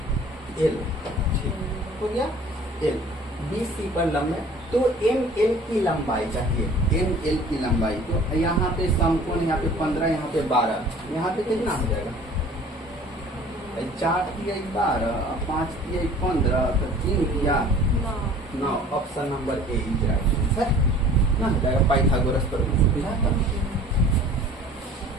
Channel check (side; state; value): both; normal; correlation 0.48